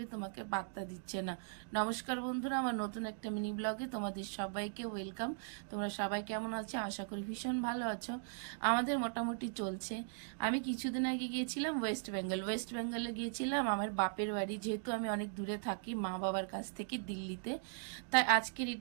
তোমাকে পাত্তা দিচ্ছে না। নমস্কার বন্ধুরা, আমার নতুন একটা মিনি ব্লগে তোমাদের সবাইকে ওয়েলকাম। তোমরা সবাই কেমন আছো? আশা করি ভীষণ ভালো আছো। আমাদের মোটামুটি চলছে। আমি কিছুদিন আগে গিয়েছিলাম ওয়েস্ট বেঙ্গলে গিয়েছিলাম আমার বাপের বাড়ি, যেহেতু আমি অনেক দূরে থাকি মা বাবার কাছ থেকে দিল্লিতে। তাই আজকে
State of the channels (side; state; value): left; silent; digital silence